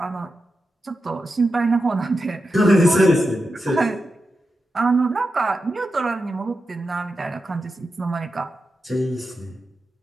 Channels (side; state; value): both; normal; correlation 0.90